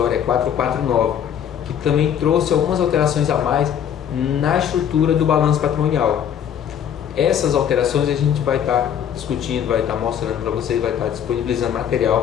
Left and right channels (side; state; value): right; quieter; 9.0 dB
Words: 449, que também trouxe algumas alterações a mais na estrutura do balanço patrimonial. Essas alterações a gente vai estar discutindo, vai estar mostrando para vocês, vai estar disponibilizando